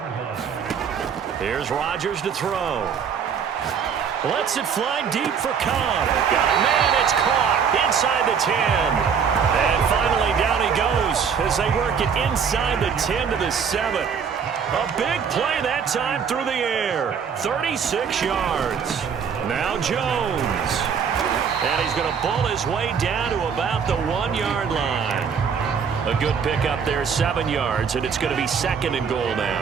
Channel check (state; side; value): quieter; left; 6.8 dB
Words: Here's Rodgers to throw. Lets it fly deep for Cobb. Got a man, it's caught inside the 10. And finally down he goes as they work it inside the 10 to the 7. A big play that time through the air. 36 yards. Now Jones. And he's going to bull his way down to about the 1-yard line. A good pickup there, 7 yards, and it's going to be 2nd and goal